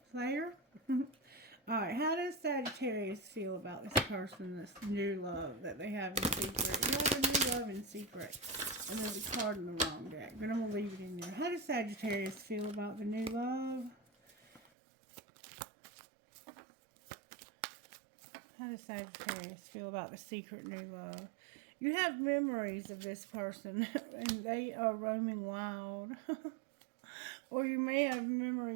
player. Alright, how does Sagittarius feel about this person, this new love that they have in secret? You have a new love in secret. And there's a card in the wrong deck, but I'm going to leave it in there. How does Sagittarius feel about the new love? How does Sagittarius feel about the secret new love? You have memories of this person, and they are roaming wild. Or you may have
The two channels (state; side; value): drops out; left; at 14.6 s